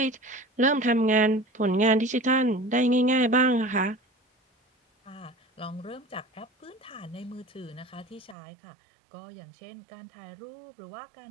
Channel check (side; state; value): left; drops out; at 8.3 s